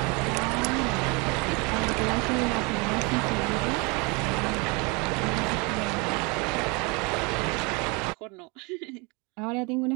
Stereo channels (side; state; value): left; quieter; 29.1 dB